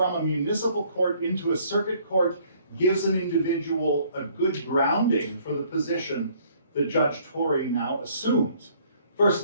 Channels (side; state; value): both; inverted; correlation -0.61